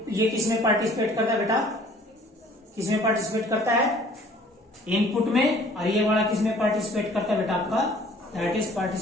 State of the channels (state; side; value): normal; both; correlation 0.54